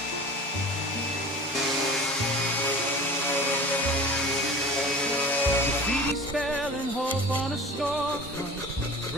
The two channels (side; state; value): both; normal; correlation 0.38